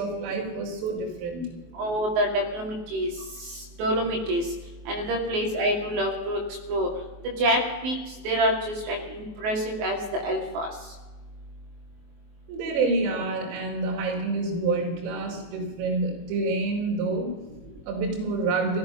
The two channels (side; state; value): left; late; 24 ms